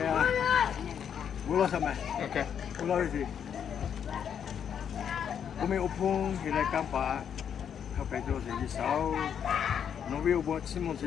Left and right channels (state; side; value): quieter; right; 8.2 dB